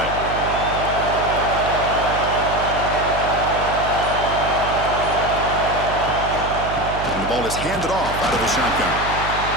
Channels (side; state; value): right; noise; hum, 8 dB below the sound